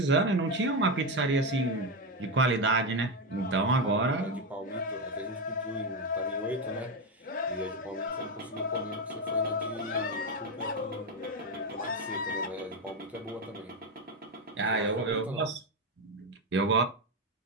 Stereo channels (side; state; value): both; normal; correlation 0.10